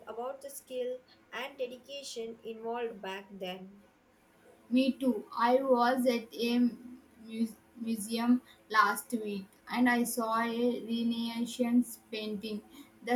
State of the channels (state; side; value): identical; both; correlation 1.00